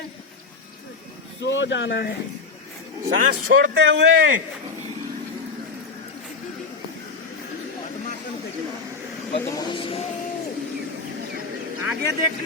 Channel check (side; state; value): right; quieter; 4.4 dB